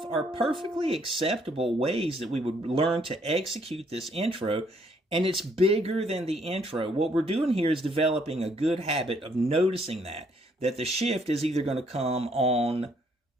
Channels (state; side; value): normal; both; correlation 0.68